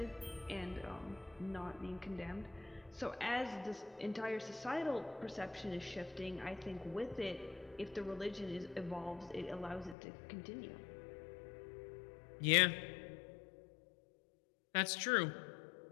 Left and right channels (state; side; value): drops out; right; at 10.0 s